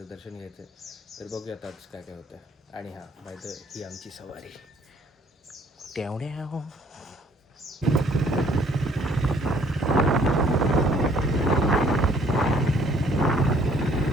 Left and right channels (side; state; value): both; normal; correlation 0.60